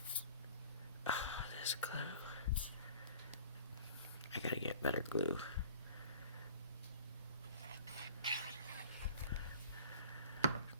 Oh, this glue. I gotta get better glue.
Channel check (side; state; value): both; inverted; correlation -0.45